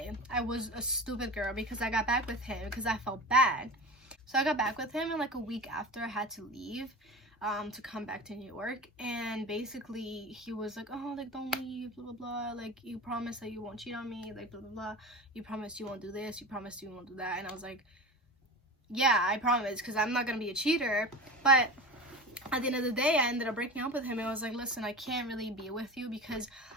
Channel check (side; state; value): both; normal; correlation 0.31